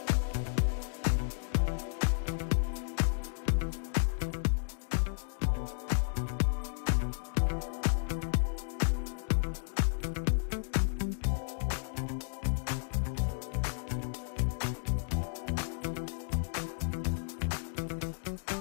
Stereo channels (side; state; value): right; silent; digital silence